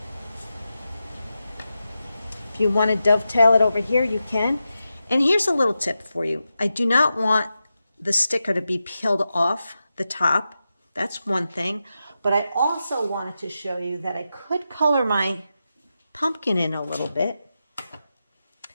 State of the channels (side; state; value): both; inverted; correlation -0.90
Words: If you want to dovetail it over here, you can. And here's a little tip for you. I do not want the sticker to be peeled off the top. That's one thing. But I also wanted to show you that I could color my pumpkin in a little bit